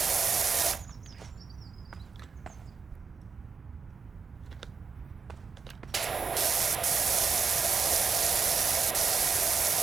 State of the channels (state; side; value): quieter; left; 5.3 dB